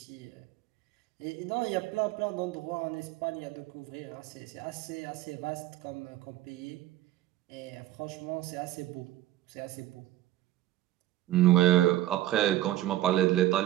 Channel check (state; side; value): quieter; left; 14.5 dB